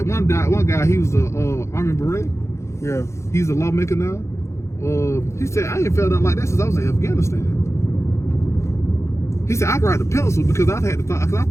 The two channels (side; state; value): right; late; 0.14 ms